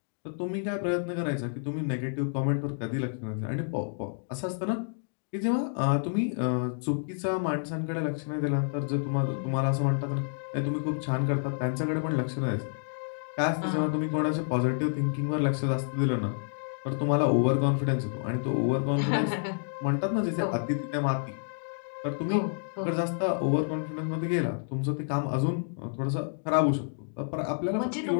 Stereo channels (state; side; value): silent; right; digital silence